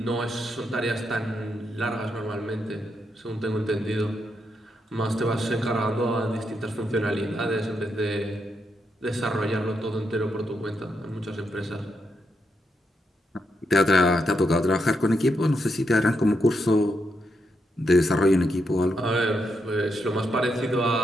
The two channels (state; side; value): normal; both; correlation 0.81